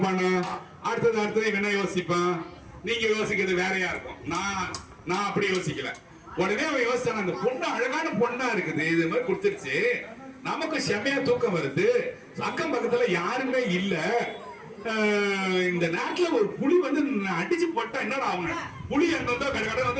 அடுத்தது இவன் என்ன யோசிப்பான்? நீங்க யோசிக்கிறது வேறையா இருக்கும். நான் அப்படி யோசிக்கல. உடனே அவன் யோசிச்சான், அந்த பொண்ணு அழகான பொண்ணா இருக்குது, இது மாதிரி கொடுத்துருச்சு, நமக்கு செம்மையா தூக்கம் வருது, அக்கம் பக்கத்துல யாருமே இல்ல, இந்த நேரத்துல ஒரு புலி வந்து அடிச்சு போட்டா என்னடா அவங்க புலி அங்க கடை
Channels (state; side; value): identical; both; correlation 1.00